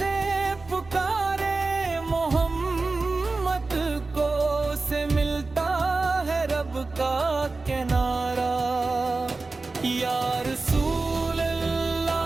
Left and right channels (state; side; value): quieter; left; 3.6 dB